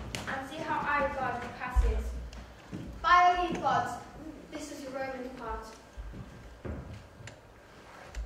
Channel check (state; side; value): identical; both; correlation 1.00